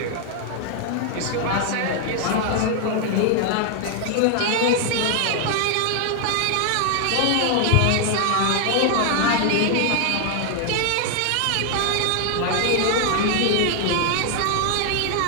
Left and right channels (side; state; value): both; different; correlation 0.00